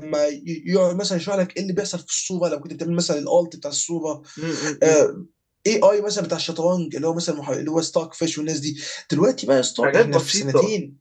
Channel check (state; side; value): identical; both; correlation 1.00